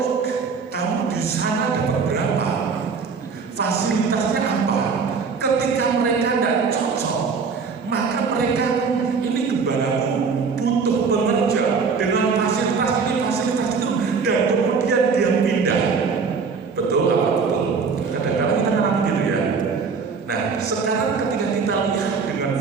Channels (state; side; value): quieter; left; 5.3 dB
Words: kamu di sana dapat berapa? Fasilitasnya apa? Ketika mereka tidak cocok, maka mereka ini gembalaku butuh pekerja dengan fasilitas ini, fasilitas itu, dan kemudian dia pindah. Betul apa betul? Kadang-kadang kita kan gitu ya.